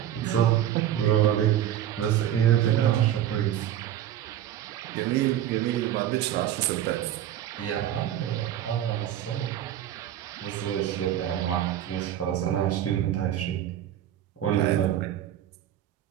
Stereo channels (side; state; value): left; quieter; 11.4 dB